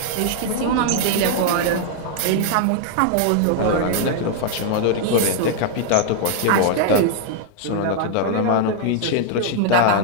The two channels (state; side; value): different; both; correlation 0.00